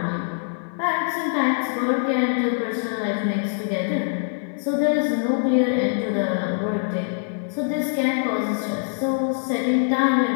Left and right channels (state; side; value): silent; right; 59 dB below the other